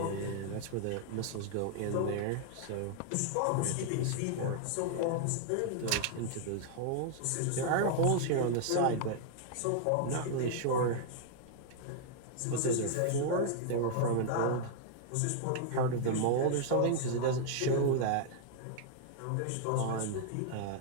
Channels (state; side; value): different; both; correlation -0.01